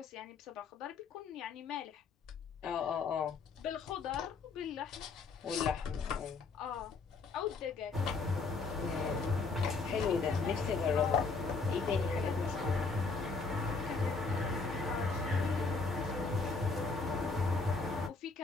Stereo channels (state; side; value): quieter; right; 4.3 dB